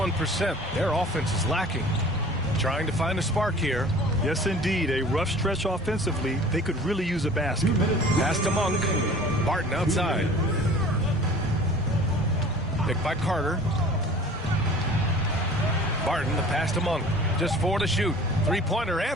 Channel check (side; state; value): both; normal; correlation 0.45